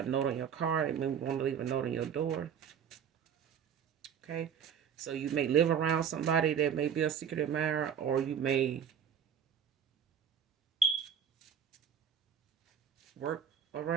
note on your car. They may want to leave a note on your door. Okay. So you may live around somebody that may be a secret admirer, or you may work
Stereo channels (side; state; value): left; quieter; 7.9 dB